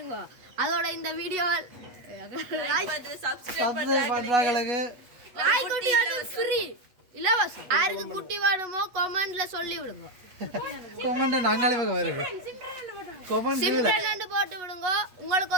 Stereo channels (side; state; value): left; late; 8.2 ms